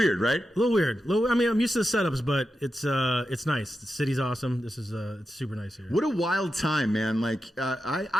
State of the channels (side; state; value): both; normal; correlation 0.89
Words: right? A little weird. I mean, I'm used to the setups, but it's nice. The city's awesome. This is it's super nice here. What a wild time, man. Like,